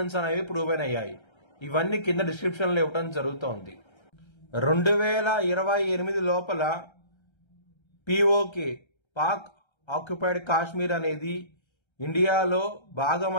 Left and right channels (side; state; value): right; late; 1.3 ms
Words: అనేవి ప్రూవ్ అయ్యాయి. ఇవన్నీ కింద డిస్క్రిప్షన్ లో ఇవ్వడం జరుగుతోంది. 2028 లోపల పిఓకే పాక్ ఆక్యుపైడ్ కాశ్మీర్ అనేది ఇండియాలో